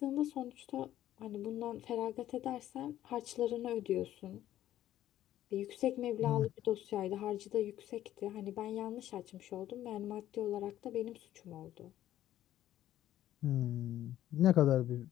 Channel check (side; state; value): right; quieter; 12.7 dB